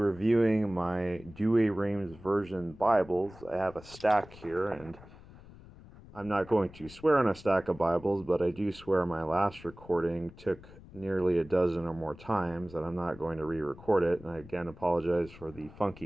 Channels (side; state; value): left; noise; rumble, 19 dB below the sound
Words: my Douay Rheims version Bibles. I have a stack here, and I'm not going to swear on a stack of Bibles, but I do swear my last recording took nearly a dozen or more times, and I'm not going to re-record it. And I again apologize for the